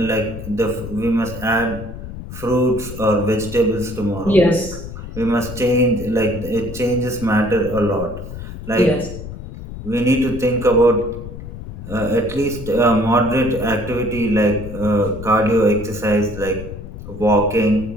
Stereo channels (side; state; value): left; noise; rumble, 11 dB below the sound